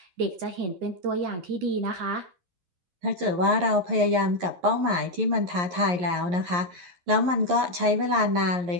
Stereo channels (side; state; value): left; late; 11 ms